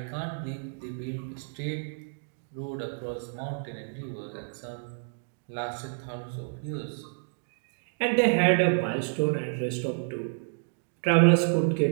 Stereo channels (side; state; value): left; silent; digital silence